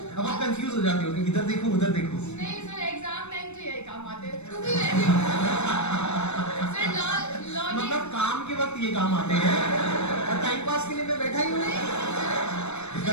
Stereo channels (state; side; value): late; right; 0.81 ms